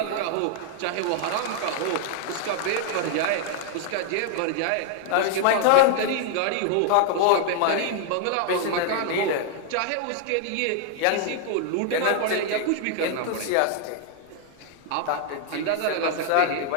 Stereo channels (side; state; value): both; different; correlation 0.00